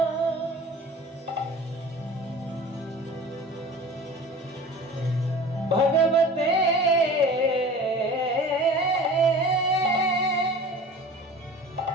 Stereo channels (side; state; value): both; normal; correlation 0.41